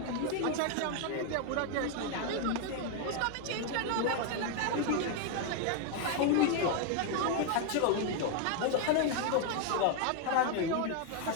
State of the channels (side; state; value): both; different; correlation 0.01